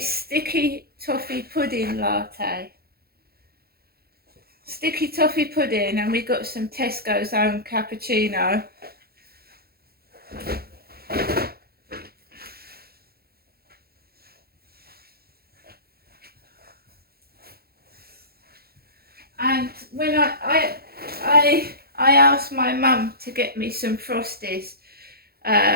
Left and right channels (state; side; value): late; left; 0.45 ms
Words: Sticky Toffee Pudding Latte. Sticky toffee pudding, and we got some Tesco's own cappuccino. And when I asked my mum to get me some Frosties